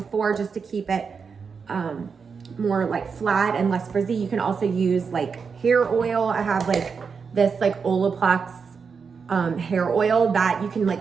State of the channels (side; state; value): left; quieter; 5.7 dB